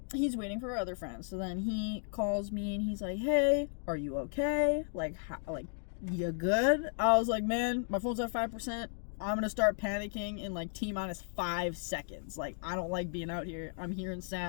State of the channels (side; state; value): right; silent; digital silence